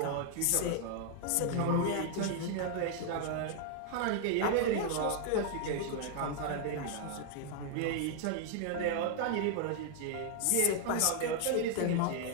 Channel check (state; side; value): different; both; correlation 0.00